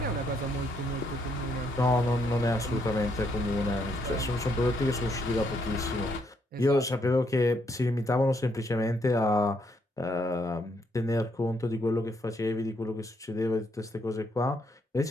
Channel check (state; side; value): normal; both; correlation 0.74